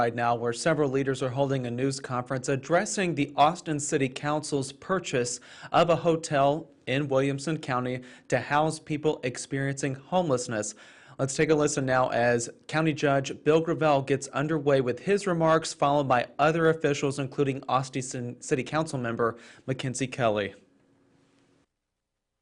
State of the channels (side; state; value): both; identical; correlation 1.00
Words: now, where several leaders are holding a news conference addressing the Austin City Council's purchase of a hotel in Williamson County to house people experiencing homelessness. Let's take a listen now as County Judge Bill Gravel gets underway with his remarks, followed by other officials, including Austin City Council member Mackenzie Kelly.